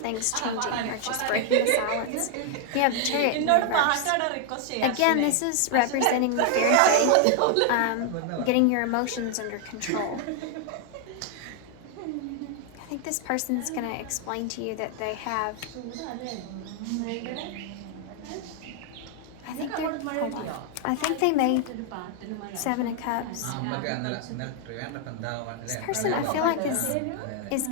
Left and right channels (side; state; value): both; different; correlation 0.00